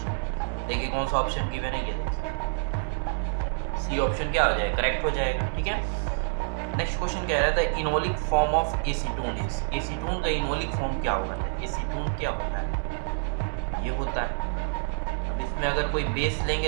देखिए कौन सा ऑप्शन गिवन है, ये देखिए सी ऑप्शन क्या हो जाएगा, करेक्ट हो जाएगा, ठीक है। नेक्स्ट क्वेश्चन कह रहा था enolic form of acetone is, acetone का इनोलिक फॉर्म क्या होगा? एसीटोन क्या होता है? ये होता है, इसमें अगर कोई बेस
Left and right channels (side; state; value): left; silent; 57 dB below the other